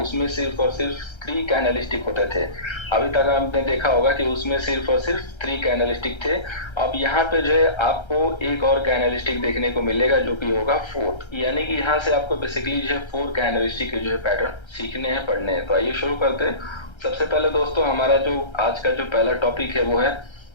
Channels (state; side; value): late; right; 1.3 ms